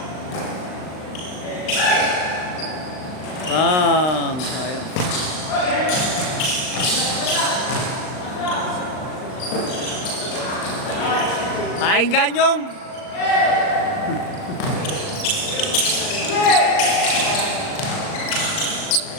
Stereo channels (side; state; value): right; late; 38 ms